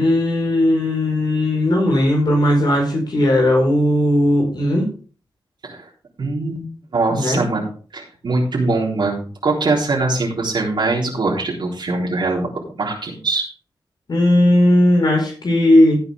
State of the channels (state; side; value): normal; both; correlation 0.82